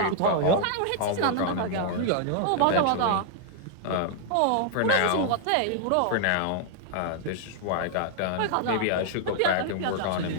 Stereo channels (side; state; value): both; different; correlation -0.01